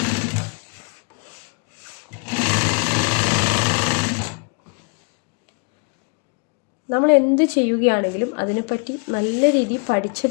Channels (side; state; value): right; quieter; 35.2 dB